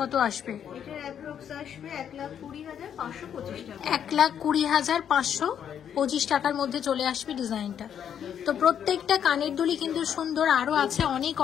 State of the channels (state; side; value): quieter; right; 8.8 dB